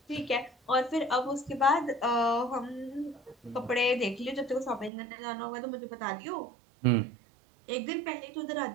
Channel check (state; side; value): drops out; left; at 4.9 s